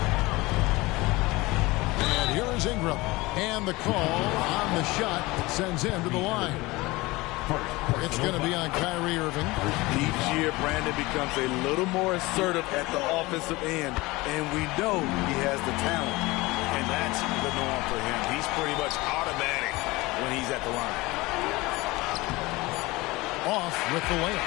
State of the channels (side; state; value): right; quieter; 21.5 dB